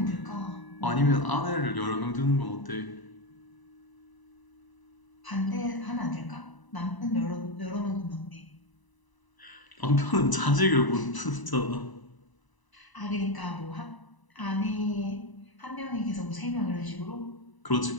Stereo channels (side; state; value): right; late; 1.0 ms